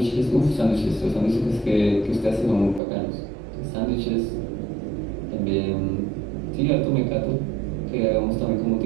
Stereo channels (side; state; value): left; drops out; at 2.8 s